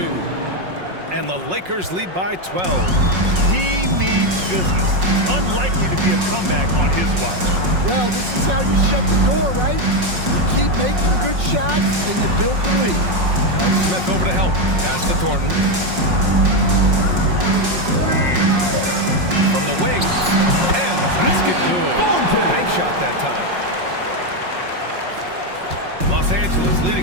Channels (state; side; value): late; left; 5.5 ms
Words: And the Lakers lead by 12. He means business. Unlikely to be a comeback on his watch. Well, this is how you shut the door, right? You keep making good shots and you build the lead. And Smith over to help. Pass to Thornton. From the wing. And the basket good. Bank shot that time. Los Angeles